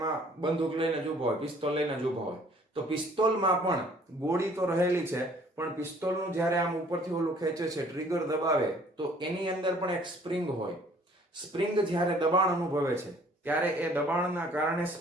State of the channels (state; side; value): normal; both; correlation 0.57